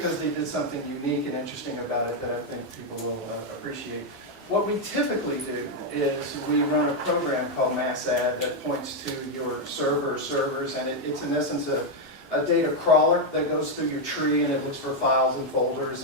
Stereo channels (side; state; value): both; normal; correlation 0.02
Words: they did something unique and interesting about it that I think people will appreciate. What we typically do is we run a program called MassAdd that points to your servers, and it's in essence a data crawler that goes through your tree and it looks for files and